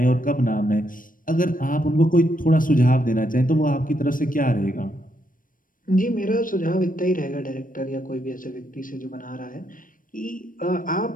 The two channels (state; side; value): late; right; 0.40 ms